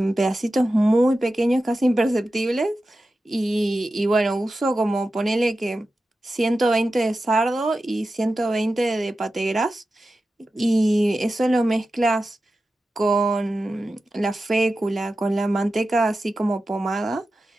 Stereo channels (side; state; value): both; normal; correlation 0.93